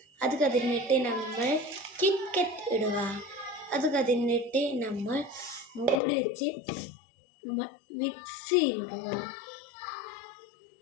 അത് കഴിഞ്ഞിട്ട് നമ്മൾ കിറ്റ്കറ്റ് ഇടുക. അത് കഴിഞ്ഞിട്ട് നമ്മൾ മൂടി വെച്ച് നമ്മൾ മിക്സിയിലിടുക.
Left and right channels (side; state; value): right; drops out; at 6.0 s